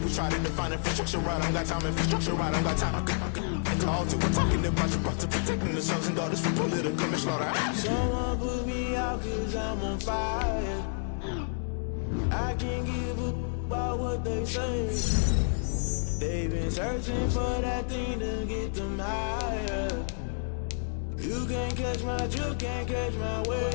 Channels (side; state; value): right; silent; digital silence